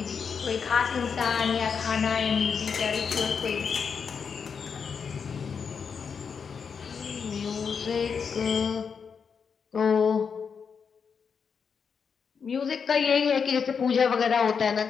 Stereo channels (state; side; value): quieter; right; 6.2 dB